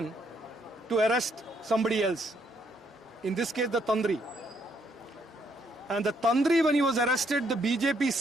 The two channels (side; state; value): both; normal; correlation 0.71